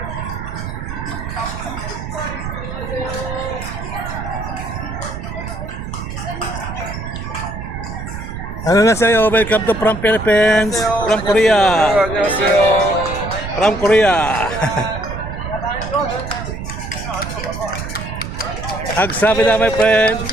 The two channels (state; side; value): noise; right; rumble, 7 dB below the sound